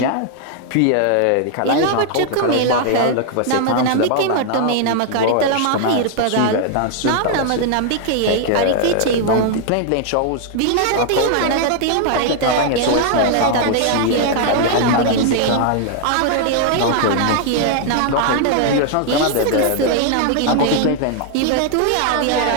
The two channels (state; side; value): different; both; correlation 0.00